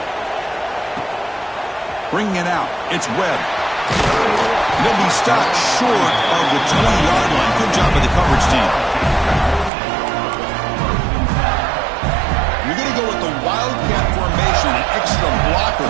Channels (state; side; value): drops out; left; at 9.7 s